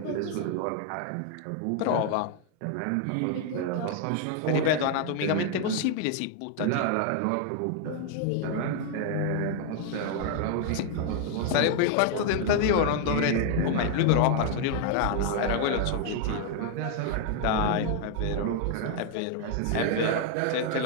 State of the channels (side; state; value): both; different; correlation 0.00